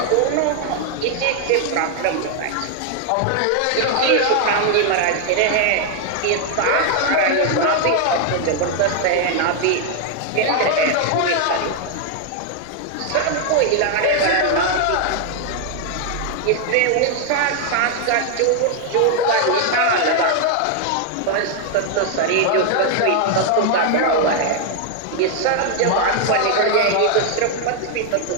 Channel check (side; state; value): both; different; correlation 0.00